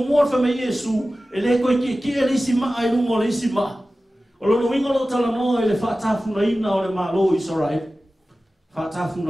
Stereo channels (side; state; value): both; normal; correlation 0.96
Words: mo fa mai Yesu ele ko ki ele sima ai lu mo le sima. O lo winga lo tala no ele fa tafu na ina o le malo Israel. Fa tafu